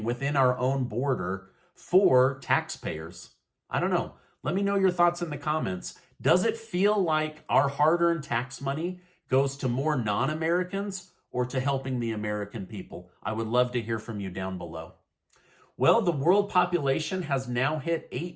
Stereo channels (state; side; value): identical; both; correlation 1.00